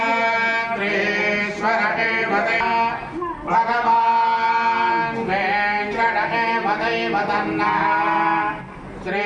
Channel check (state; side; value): identical; both; correlation 1.00